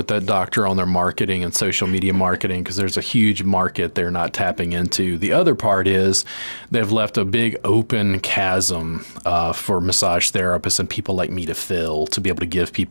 that doctor on their marketing and social media marketing, because there's a huge market they're not tapping into. The other part is they've left a big open chasm for massage therapists and people like me to fill, to be able to give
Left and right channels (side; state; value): both; inverted; correlation -1.00